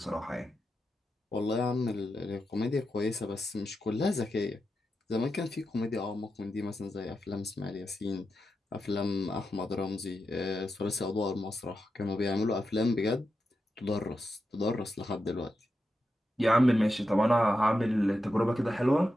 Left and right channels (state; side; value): normal; both; correlation 0.88